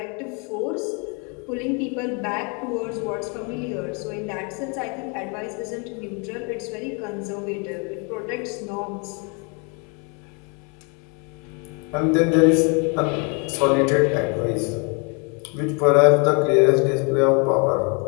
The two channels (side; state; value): right; quieter; 34.5 dB